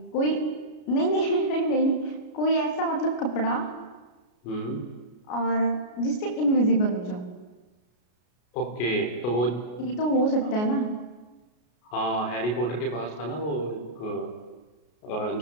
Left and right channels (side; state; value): right; late; 33 ms